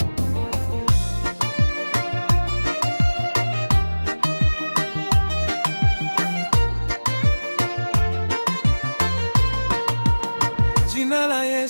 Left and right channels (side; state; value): both; inverted; correlation -1.00